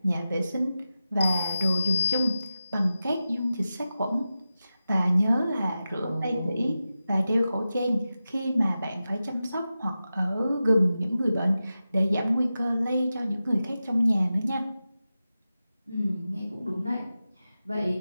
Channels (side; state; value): both; inverted; correlation -0.93